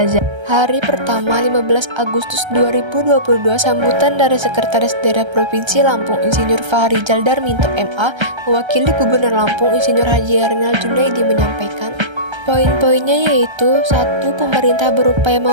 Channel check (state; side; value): late; left; 1.3 ms